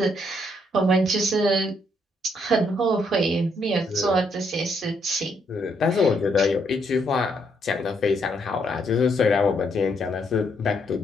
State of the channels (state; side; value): normal; both; correlation 0.73